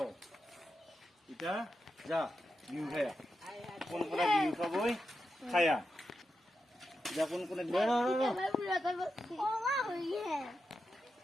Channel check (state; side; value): normal; both; correlation 0.88